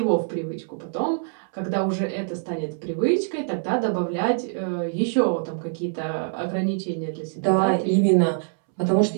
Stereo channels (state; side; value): silent; left; 62 dB below the other